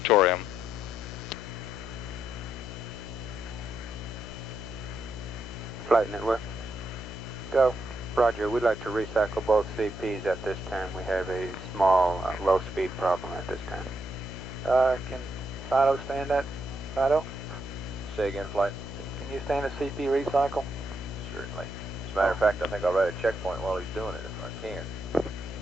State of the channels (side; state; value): left; noise; hum, 9 dB below the sound